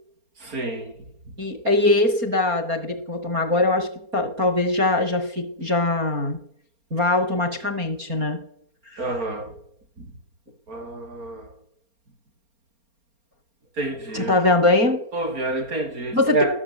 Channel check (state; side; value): late; left; 4.3 ms